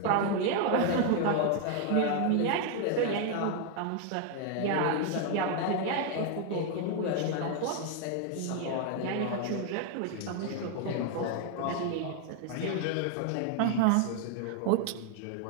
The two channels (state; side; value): different; both; correlation 0.01